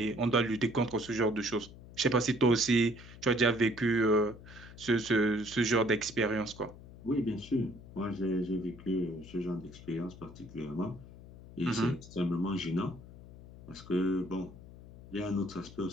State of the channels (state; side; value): noise; left; hum, 17 dB below the sound